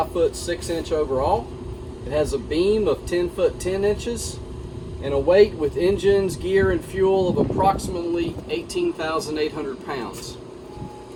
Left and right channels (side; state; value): both; identical; correlation 1.00